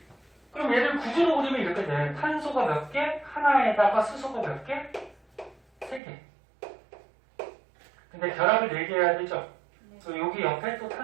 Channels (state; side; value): drops out; left; at 6.0 s